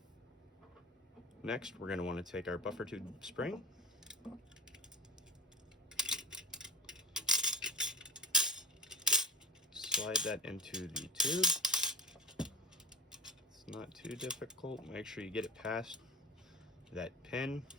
Next, we're going to want to take our buffer tube spring, slide that into the tube. It's not too difficult. Make sure you get it past that pin.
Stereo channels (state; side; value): normal; both; correlation 0.30